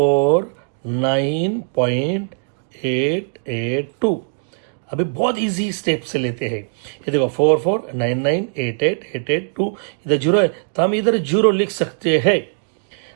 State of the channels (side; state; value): left; silent; digital silence